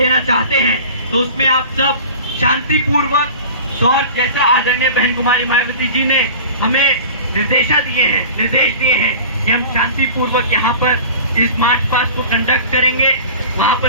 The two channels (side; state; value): both; inverted; correlation -0.38